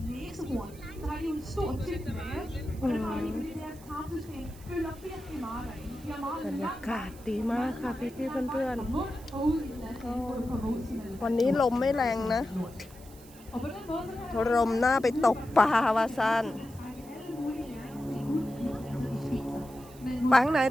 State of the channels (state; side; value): noise; right; hiss, 22 dB below the sound